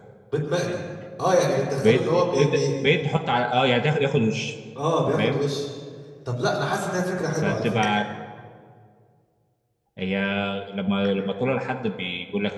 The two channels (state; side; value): identical; both; correlation 1.00